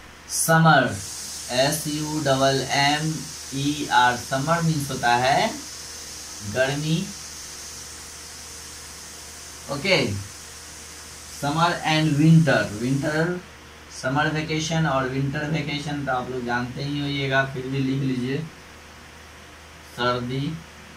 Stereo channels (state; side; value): identical; both; correlation 1.00